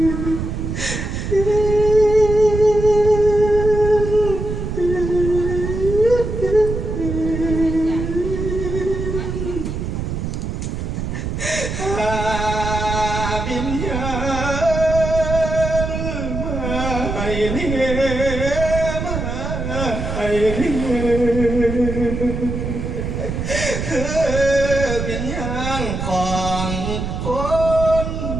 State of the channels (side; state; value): right; noise; rumble, 4 dB below the sound